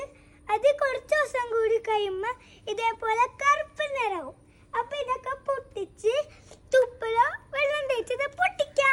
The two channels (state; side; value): identical; both; correlation 1.00